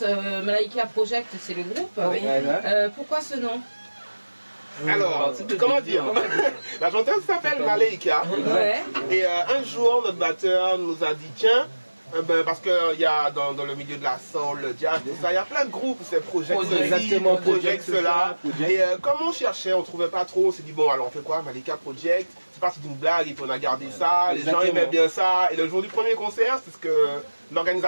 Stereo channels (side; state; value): both; inverted; correlation -1.00